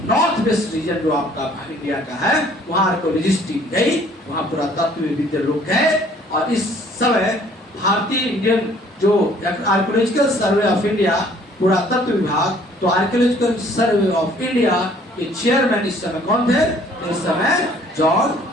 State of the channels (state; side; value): normal; both; correlation 0.58